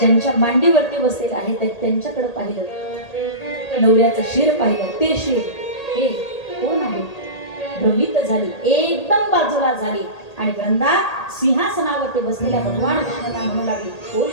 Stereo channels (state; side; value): late; right; 1.8 ms